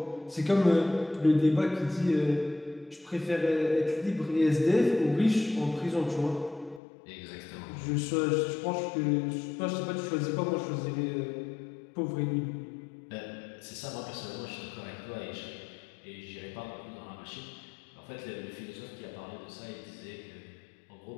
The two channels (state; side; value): drops out; right; at 6.8 s